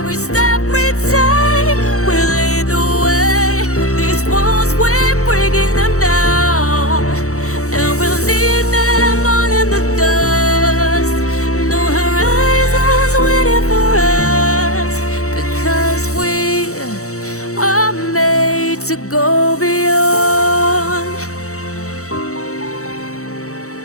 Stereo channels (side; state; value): right; late; 0.65 ms